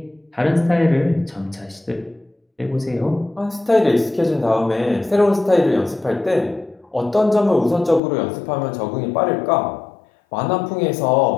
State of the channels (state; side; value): drops out; right; at 8.0 s